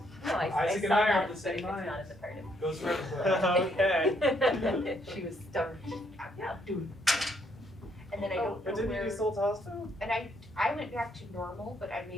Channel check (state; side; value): normal; both; correlation 0.71